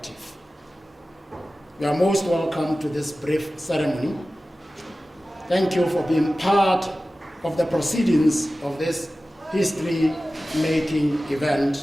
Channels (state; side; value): normal; both; correlation 0.96